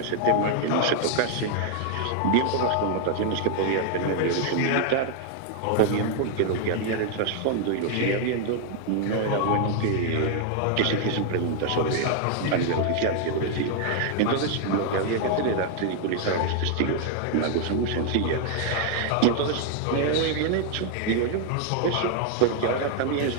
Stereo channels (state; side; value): different; both; correlation 0.00